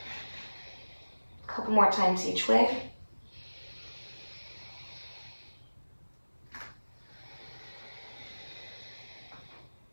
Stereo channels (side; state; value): both; inverted; correlation -1.00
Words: A couple more times each way.